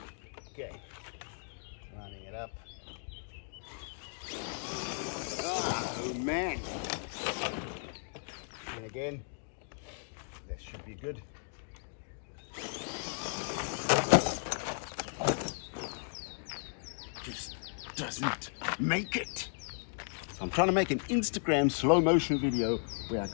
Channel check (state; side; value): silent; right; digital silence